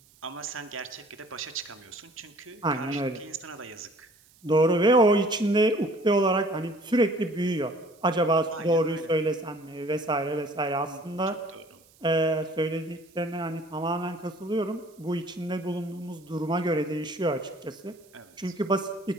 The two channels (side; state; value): right; noise; hiss, 29 dB below the sound